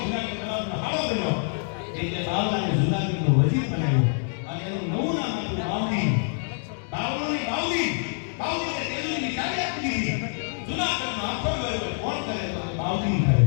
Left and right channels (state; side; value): silent; right; 61 dB below the other